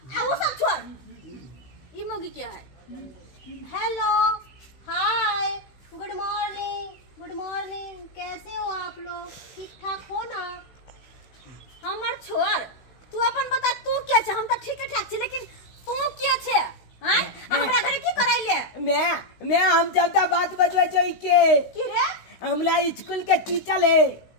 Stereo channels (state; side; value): late; right; 16 ms